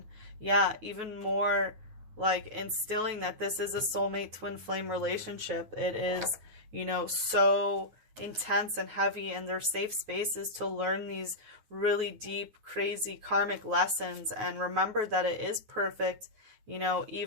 Yeah, even more like instilling that this is a soulmate twin flame relationship. It is, you know, so intense and heavy, and they're safe spaces to learn these really deep, crazy karmic lessons, and remember that it is perfect, you know,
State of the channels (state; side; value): late; left; 9.4 ms